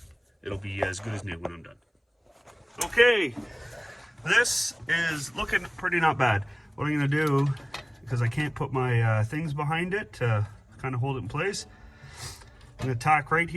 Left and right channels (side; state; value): both; identical; correlation 1.00